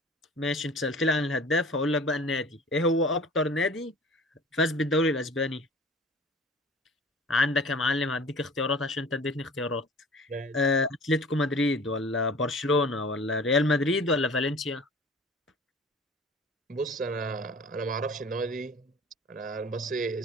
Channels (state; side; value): normal; both; correlation 0.44